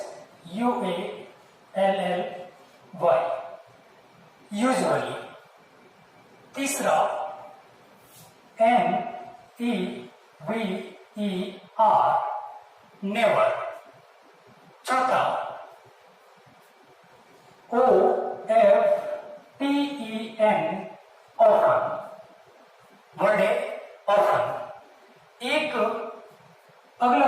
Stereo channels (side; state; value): both; identical; correlation 1.00